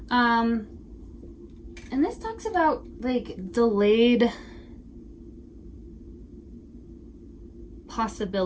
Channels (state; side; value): identical; both; correlation 1.00